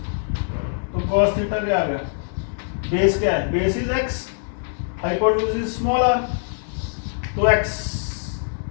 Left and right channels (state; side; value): silent; right; digital silence